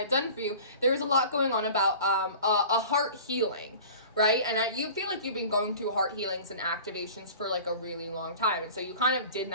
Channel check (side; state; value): both; inverted; correlation -0.41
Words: done for you, there was a lot going on about a heart healing, right? And you feel like you've been going through heart healings and activations for like a really long time. And so you kind of did